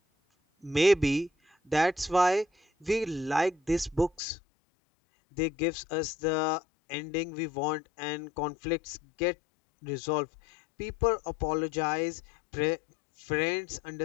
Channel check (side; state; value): right; drops out; at 4.1 s